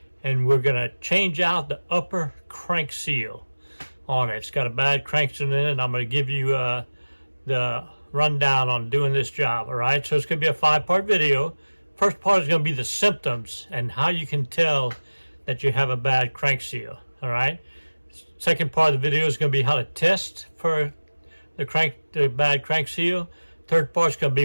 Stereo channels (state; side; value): inverted; both; correlation -1.00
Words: and we're going to change out the upper crank seal on it. It's got a bad crank seal in it, and I'm going to give you the rundown on doing this job. All right, so it's going to be a 5-part video. First part is going to be the symptoms and how you can tell that you have a bad crank seal. All right, second part of the video is going to be how to test for the bad crank seal. Third part is going to